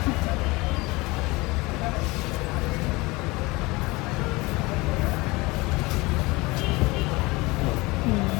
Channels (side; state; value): right; quieter; 23.1 dB